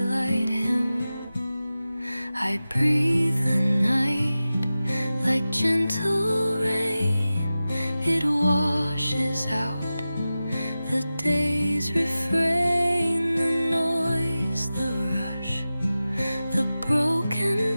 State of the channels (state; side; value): inverted; both; correlation -0.95